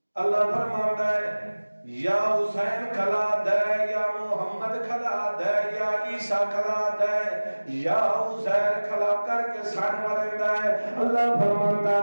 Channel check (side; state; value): both; inverted; correlation -1.00